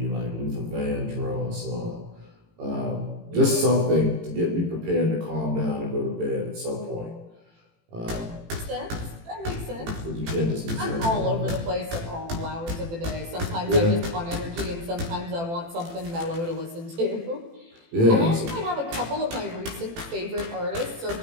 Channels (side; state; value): left; late; 18 ms